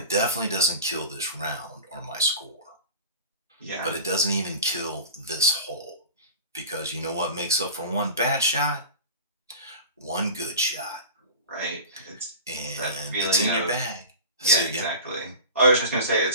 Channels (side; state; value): both; inverted; correlation -0.34